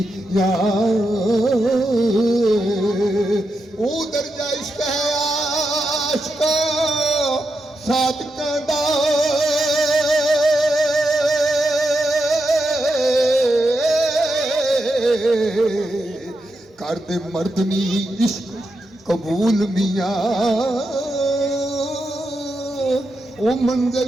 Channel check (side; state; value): both; normal; correlation 0.86